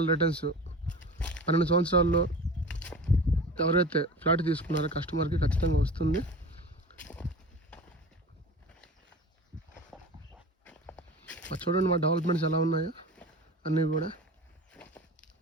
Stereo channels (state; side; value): normal; both; correlation 0.35